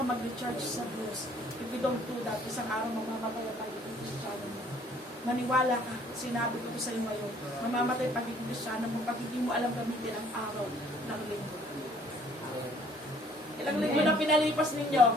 mag-recharge sa Diyos. If you don't do that, isang araw mamamatay ang pagiging Kristiyano mo. Maniwala ka, sinabi ko sa iyo ngayon, mamamatay ang pagiging Kristiyano mo pag hindi mo alam gamitin ang araw ng linggo. Ilang linggo na pinalipas ninyo?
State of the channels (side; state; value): both; normal; correlation 0.59